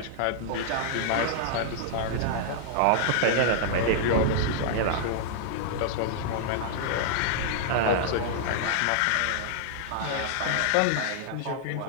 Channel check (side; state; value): both; different; correlation -0.01